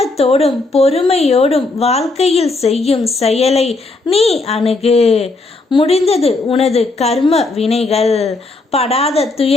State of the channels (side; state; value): right; quieter; 3.3 dB